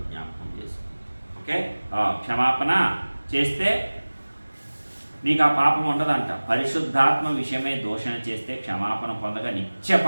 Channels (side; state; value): both; inverted; correlation -1.00